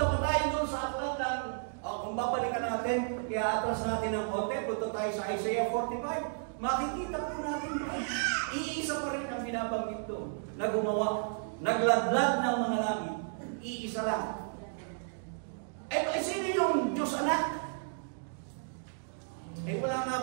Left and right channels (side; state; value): left; silent; digital silence